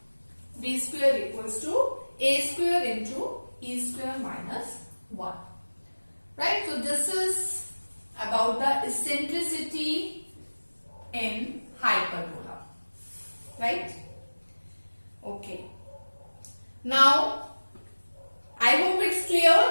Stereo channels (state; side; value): inverted; both; correlation -1.00